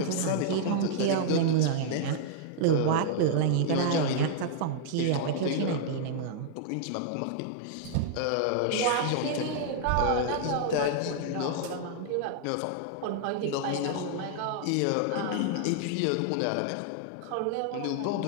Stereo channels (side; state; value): both; different; correlation -0.01